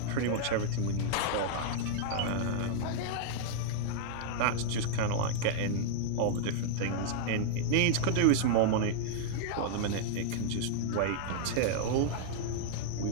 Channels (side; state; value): both; different; correlation -0.01